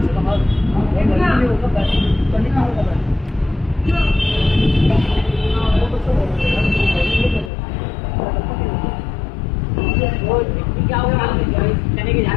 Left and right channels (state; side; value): drops out; right; at 7.5 s